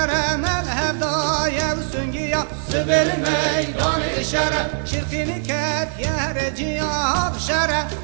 مذهب دای و سنگیا سبل میدان شر شرقی کت یهر جیا شر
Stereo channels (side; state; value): left; silent; 65 dB below the other